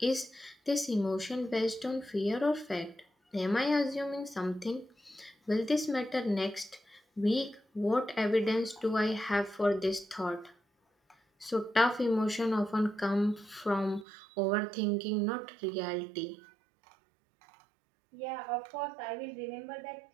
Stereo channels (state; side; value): drops out; left; at 14.1 s